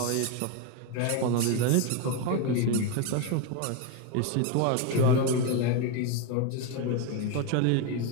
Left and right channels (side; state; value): both; different; correlation 0.02